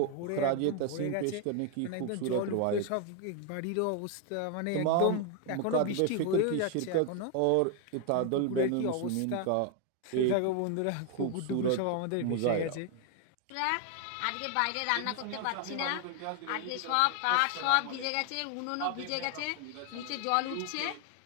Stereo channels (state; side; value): different; both; correlation 0.01